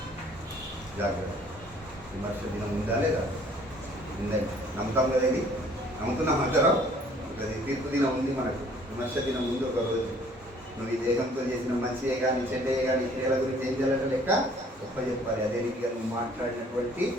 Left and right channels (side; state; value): both; normal; correlation 0.57